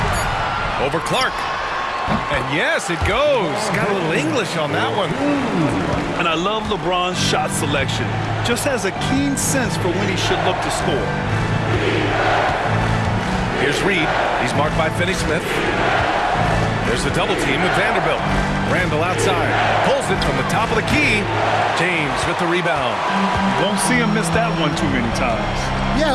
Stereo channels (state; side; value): identical; both; correlation 1.00